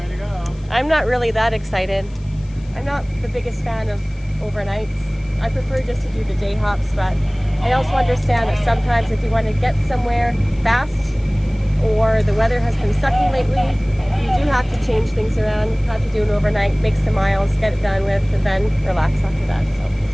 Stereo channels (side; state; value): left; noise; hiss, 28 dB below the sound